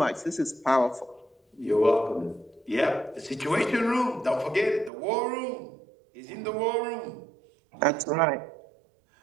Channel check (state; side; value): drops out; left; at 4.9 s